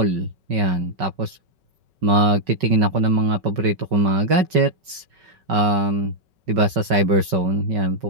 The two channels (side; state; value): left; late; 5.3 ms